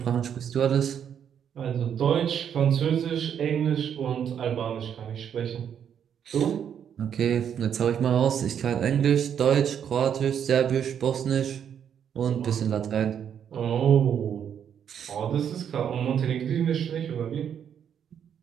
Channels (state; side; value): quieter; left; 8.5 dB